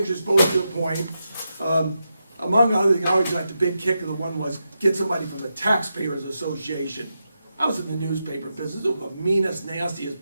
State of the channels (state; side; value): inverted; both; correlation -0.87